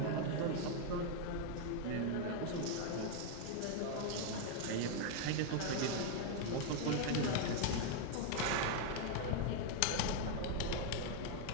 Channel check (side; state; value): both; different; correlation 0.00